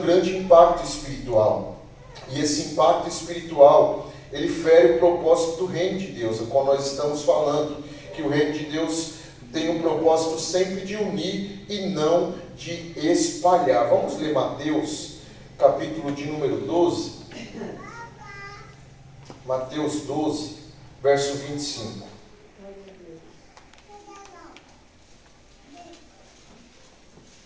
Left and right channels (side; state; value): both; identical; correlation 1.00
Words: impacto espiritual, e esse impacto espiritual, ele fere o propósito do reino de Deus, a qual nós estamos falando, que o reino de Deus tem um propósito sempre de unir e não de espalhar. Vamos ler Mateus, capítulo de número 12. Mateus 12, verso 25.